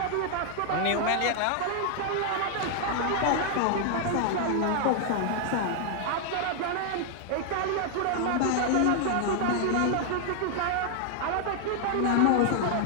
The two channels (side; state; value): both; different; correlation 0.00